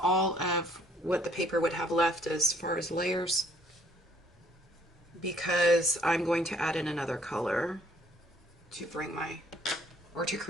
of what the paper would have left as far as layers, because I'm going to add in another color to bring to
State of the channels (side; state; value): both; normal; correlation 0.63